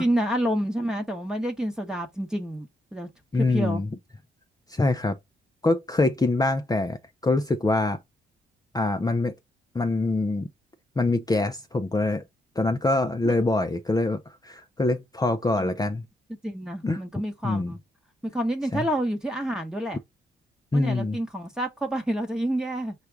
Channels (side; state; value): both; normal; correlation 0.80